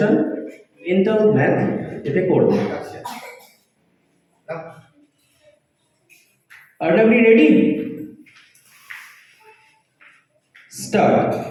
মেন্টাল ম্যাথ এতে করবে। আর আপনি ready? Start.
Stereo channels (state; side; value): identical; both; correlation 1.00